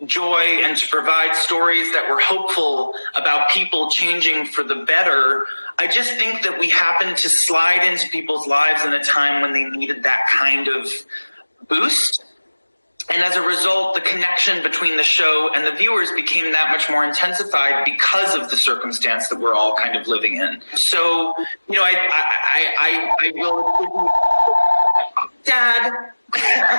joy and to provide stories that were hopeful about people changing for the better. I just think that we happened to slide into people's lives in a time when they needed that kind of boost. And as a result, the connection between the show and the viewers became that much more intensified because of the circumstance that we're all kind of living in. So, you know, I will, Dad.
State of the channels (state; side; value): inverted; both; correlation -1.00